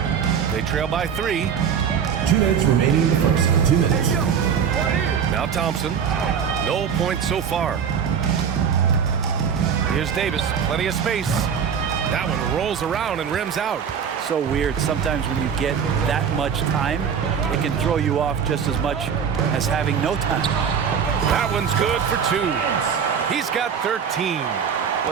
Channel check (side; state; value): left; quieter; 7.3 dB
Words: They trail by 3. 2 minutes remaining in the first. 2 minutes. Now Thompson. No points so far. Here's Davis. Plenty of space. That one rolls around and rims out. So weird. Sometimes when you get that much time, it can throw you off just as much as having no time. That one's good for 2. He's got 13.